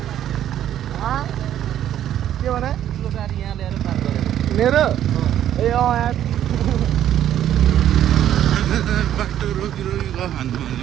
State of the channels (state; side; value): quieter; left; 11.1 dB